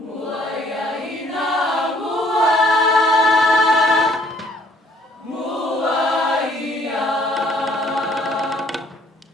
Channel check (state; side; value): normal; both; correlation 0.60